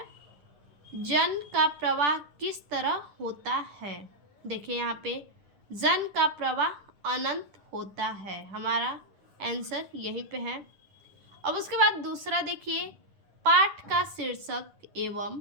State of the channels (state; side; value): late; left; 10 ms